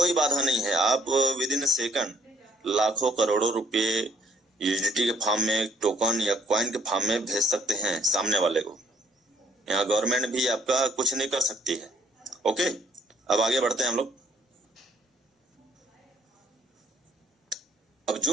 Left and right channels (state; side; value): normal; both; correlation 0.62